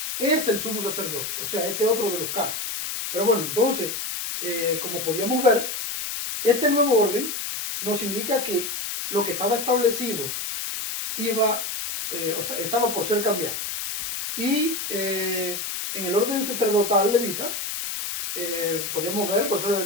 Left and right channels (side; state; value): left; noise; hiss, 4 dB below the sound